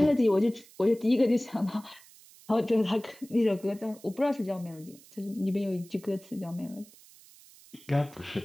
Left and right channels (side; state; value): right; noise; hiss, 23 dB below the sound